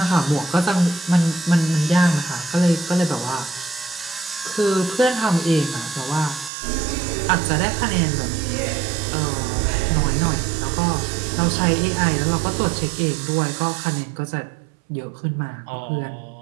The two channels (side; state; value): left; drops out; at 6.5 s